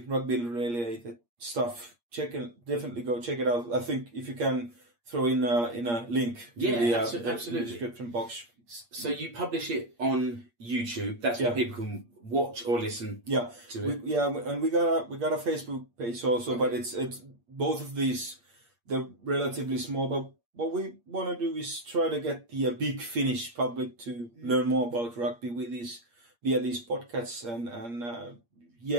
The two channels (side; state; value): left; late; 8.5 ms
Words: related stuff, definitely go check it out. I think if you can throw in a link to the description box. So you publish it on YouTube. That's where people can watch or listen to it. And we got a Facebook page also, but it's both of these, they're relatively small. But what we want to do is try to get the big Finnish public to learn more about rugby via these podcasts, and